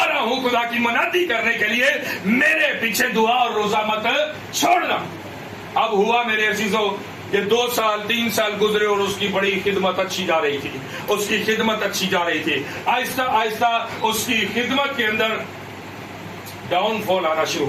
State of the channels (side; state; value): both; identical; correlation 1.00